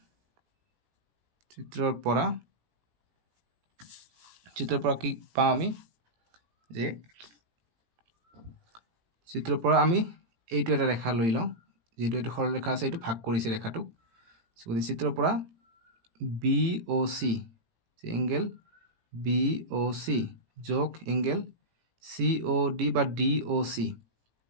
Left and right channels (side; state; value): left; late; 18 ms